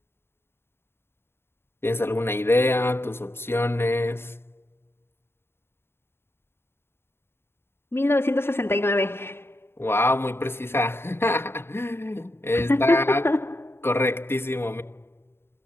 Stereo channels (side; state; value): right; late; 0.11 ms